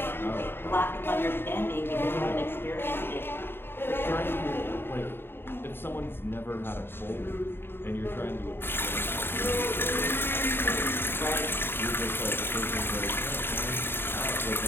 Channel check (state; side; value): late; right; 0.11 ms